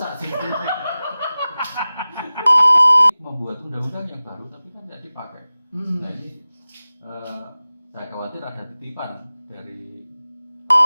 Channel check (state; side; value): inverted; both; correlation -0.97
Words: sih. Membuat undang-undang yang baru tapi kan tidak dipakai. Nah ini saya khawatir ada titipan dari